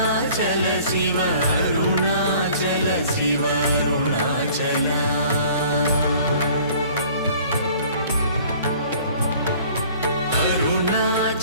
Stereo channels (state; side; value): inverted; both; correlation -0.51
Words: Shiva Arunachal Shiva Arunachal